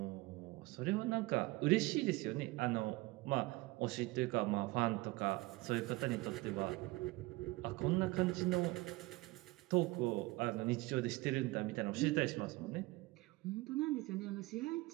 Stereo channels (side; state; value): left; quieter; 21.4 dB